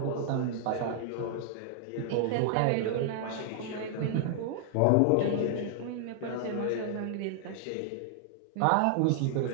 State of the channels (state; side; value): different; both; correlation 0.00